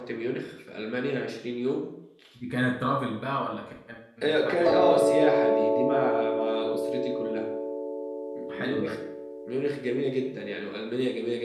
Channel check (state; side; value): identical; both; correlation 1.00